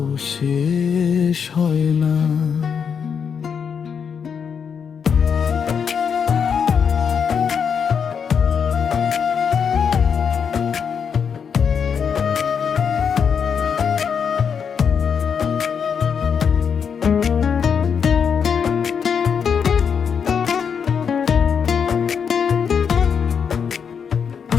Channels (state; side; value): quieter; right; 6.9 dB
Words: শেষ হয় না।